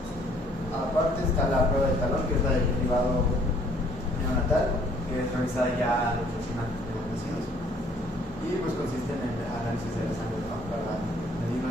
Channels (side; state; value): both; normal; correlation 0.60